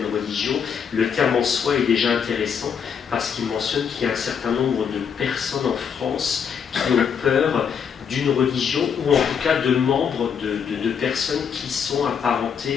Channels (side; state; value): right; quieter; 7.2 dB